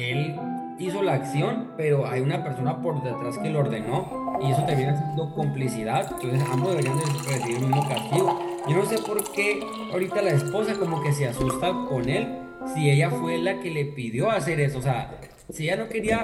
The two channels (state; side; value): identical; both; correlation 1.00